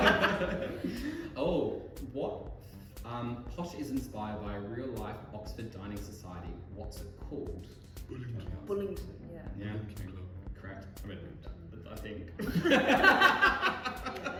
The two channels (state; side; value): identical; both; correlation 1.00